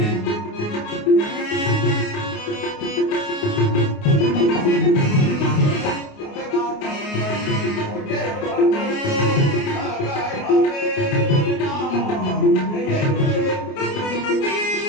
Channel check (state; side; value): late; right; 29 ms